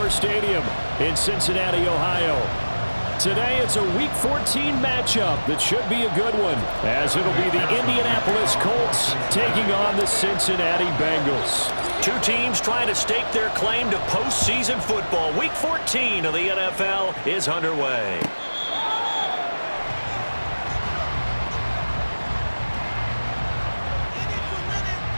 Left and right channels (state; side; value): inverted; both; correlation -1.00